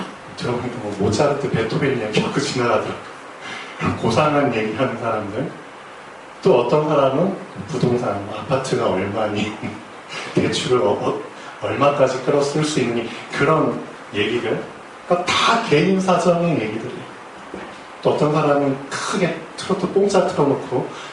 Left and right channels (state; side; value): identical; both; correlation 1.00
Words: 들어보니까 뭐 모차르트, 베토벤 이야기하고 지나가더라고요. 고상한 얘기하는 사람들. 또 어떤 사람은 부동산, 아파트가 얼마니, 대출을 얼마까지 끌어쓸 수 있니, 그런 얘기들. 그러니까 다 개인 사정의 얘기들이에요. 또 어떤 사람은 크게 트로트 뽕짝 틀어놓고